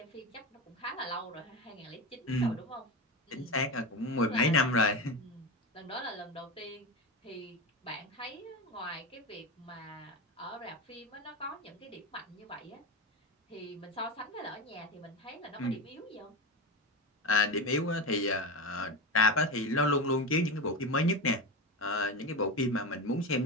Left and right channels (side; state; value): both; normal; correlation 0.20